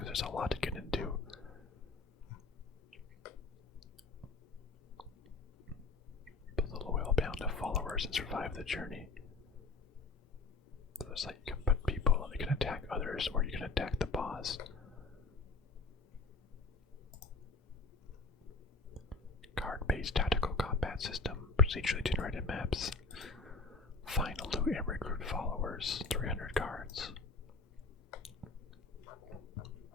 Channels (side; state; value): right; quieter; 3.8 dB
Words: there's a lot to get into. Build a loyal band of followers and survive the journey. So it's like you can put people, you can attack others, or you can attack the boss. Card-based tactical combat system, procedurally generated maps. Find, loot, and recruit followers. 300 cards.